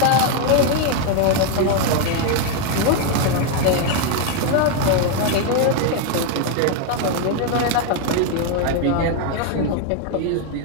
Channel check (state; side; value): different; both; correlation 0.01